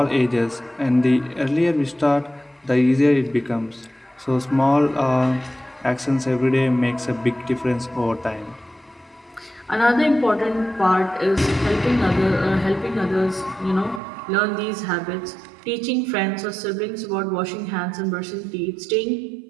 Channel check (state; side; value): drops out; left; at 14.0 s